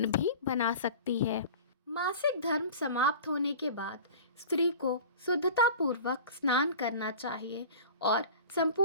भी बना सकती है। मासिक धर्म समाप्त होने के बाद स्त्री को शुद्धतापूर्वक स्नान करना चाहिए और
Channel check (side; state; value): both; inverted; correlation -0.39